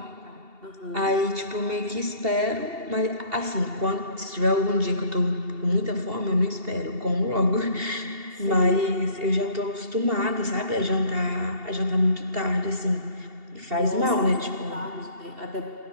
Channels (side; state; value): left; late; 2.7 ms